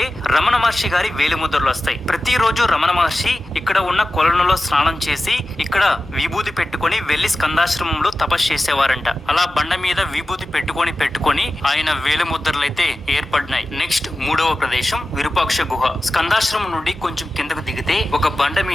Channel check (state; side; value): normal; both; correlation 0.94